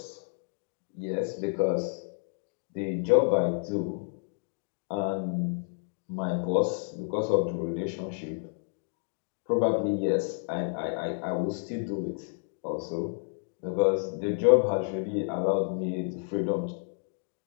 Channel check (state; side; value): silent; right; digital silence